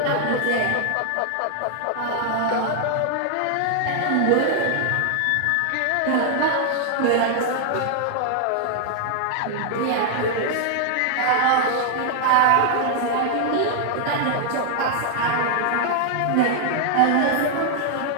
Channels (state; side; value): different; both; correlation 0.00